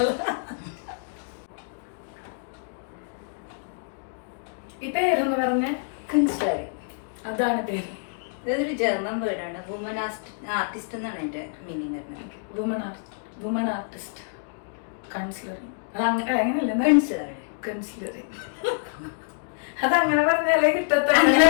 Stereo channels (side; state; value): right; silent; digital silence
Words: ഈ പേരെന്ന് പറഞ്ഞ കൺസ്ട്രൈ, അതാണ് പേര്. ഇതൊരു ജർമ്മൻ വേർഡാണ്. വുമൻ ആർട്ടിസ്റ്റ് എന്നാണ് എന്റെ മീനിങ്. Woman artist കൺസിലറിങ്. അത് അങ്ങനെയല്ല, അതങ്ങനെ പറഞ്ഞാലേ